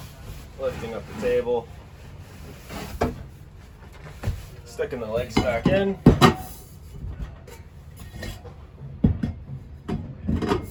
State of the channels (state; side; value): identical; both; correlation 1.00